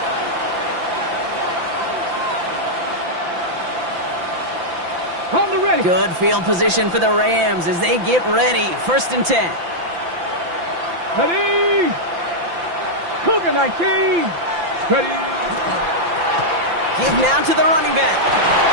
On the ready. Good field position for the Rams as they get ready. 1st and 10. Ready. Cougar 19. Ready. Give now to the running back.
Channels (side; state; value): left; late; 5.9 ms